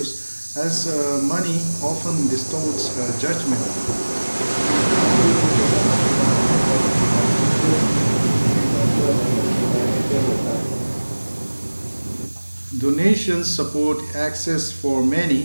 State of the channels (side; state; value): both; inverted; correlation -1.00